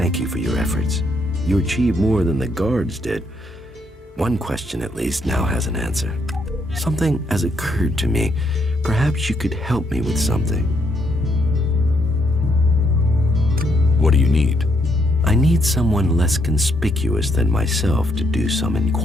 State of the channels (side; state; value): both; normal; correlation 0.74